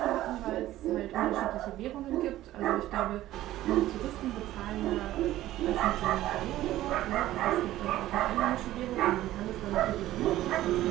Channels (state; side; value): quieter; left; 14.7 dB